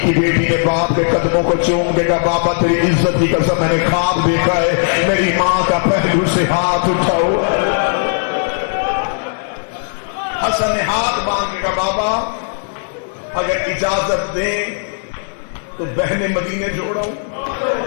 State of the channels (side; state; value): right; silent; digital silence